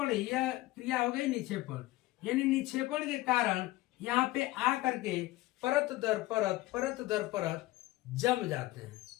यह क्रिया हो गई निक्षेपण, यानी निक्षेपण के कारण यहाँ पे आ करके परत दर परत जम जाते हैं।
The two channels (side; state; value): right; quieter; 18.3 dB